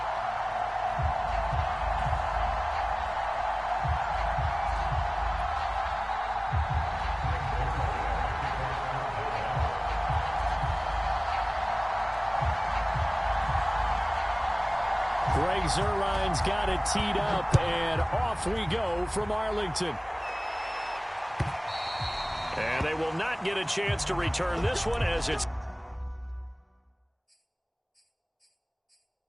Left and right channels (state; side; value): identical; both; correlation 1.00